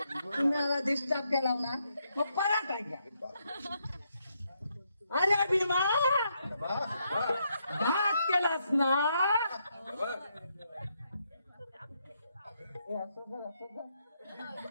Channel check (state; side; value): inverted; both; correlation -0.78